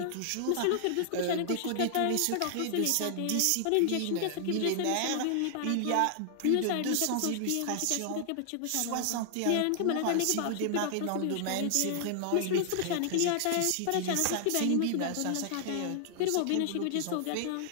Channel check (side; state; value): both; different; correlation -0.01